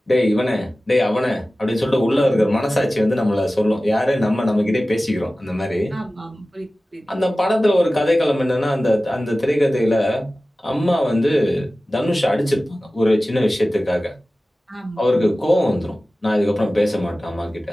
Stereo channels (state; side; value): normal; both; correlation 0.96